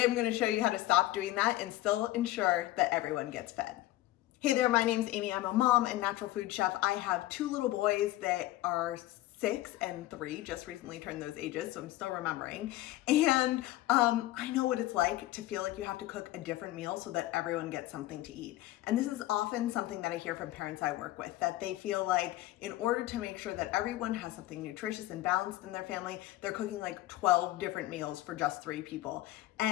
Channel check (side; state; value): right; quieter; 16.2 dB